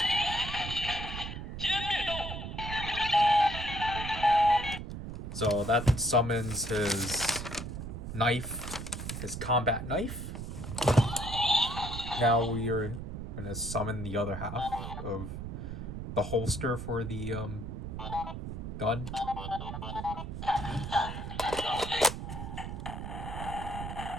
So that summons his knife, his combat knife. Now we are going to summon the other half of the holster for the gun.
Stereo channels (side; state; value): right; noise; rumble, 7 dB below the sound